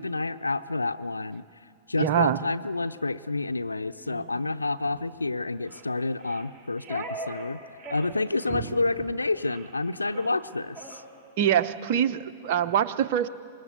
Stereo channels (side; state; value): both; inverted; correlation -0.63